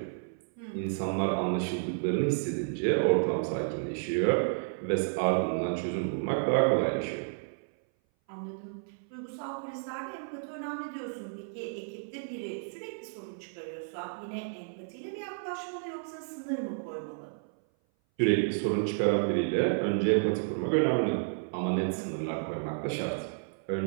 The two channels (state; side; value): silent; left; 57 dB below the other